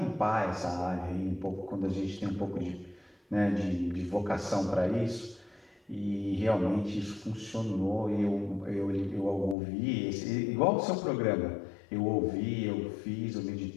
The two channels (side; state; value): right; drops out; at 9.6 s